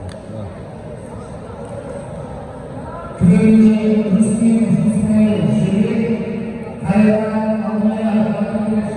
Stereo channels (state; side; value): identical; both; correlation 1.00